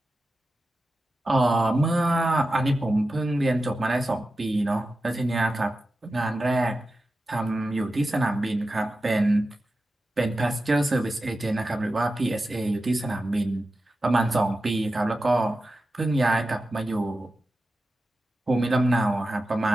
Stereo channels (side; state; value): both; normal; correlation 0.92